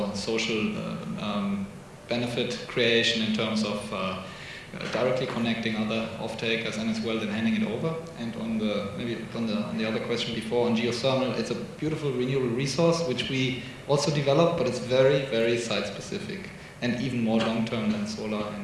social benefit creation in terms of directly connecting other off-takers and as well then handing it over. And on the other question before on geothermal, it's a beautiful renewable resource which we also develop, but it's very, very site-specific and even more long-term than solar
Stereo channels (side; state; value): both; identical; correlation 1.00